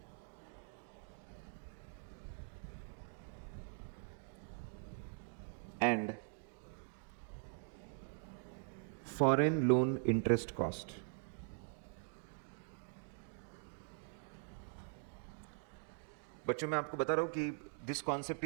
and foreign loan interest cost. बच्चों मैं आपको बता रहा हूँ कि this concept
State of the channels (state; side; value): silent; left; digital silence